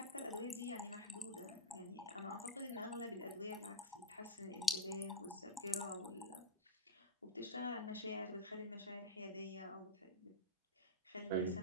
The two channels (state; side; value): normal; both; correlation -0.02